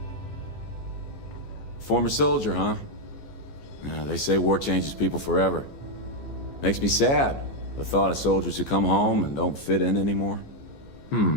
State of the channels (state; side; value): late; right; 14 ms